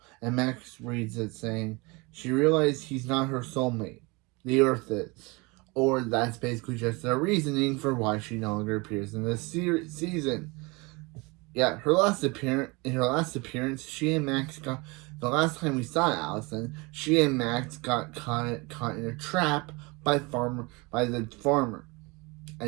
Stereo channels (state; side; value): quieter; left; 26.4 dB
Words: And Max reads it saying, she realized he's not her soulmate. The Earth is. Or that's basically just their reasoning for why she no longer appears in this season. Yeah, in her last appearance, she and Max got. The last time we saw Allison, she and Max got caught in a trap by the farmer,